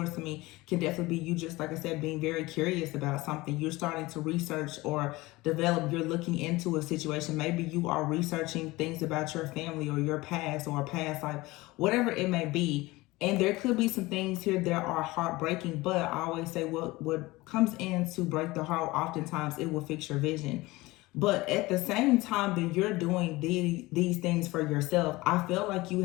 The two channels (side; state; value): right; quieter; 20.6 dB